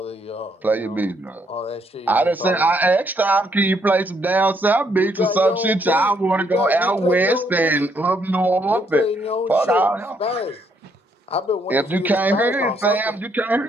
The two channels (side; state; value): both; normal; correlation 0.72